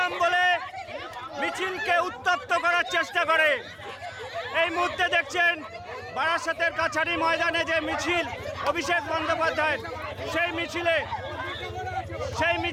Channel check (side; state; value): both; identical; correlation 1.00